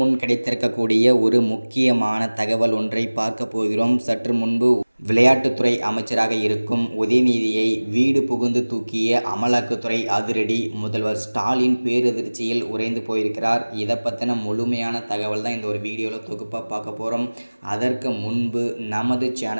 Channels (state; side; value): inverted; both; correlation -1.00